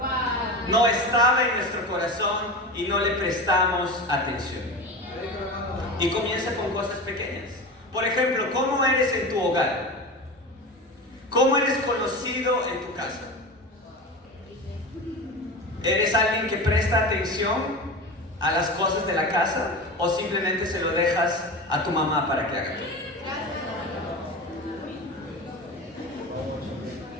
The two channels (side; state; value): both; normal; correlation 0.28